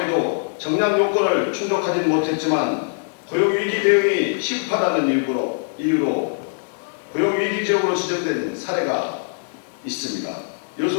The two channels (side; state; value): right; silent; digital silence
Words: 정량 요건을 충족하지는 못했지만 고용위기 대응이 시급하다는 이유로 고용위기 지역으로 지정된 사례가 있습니다.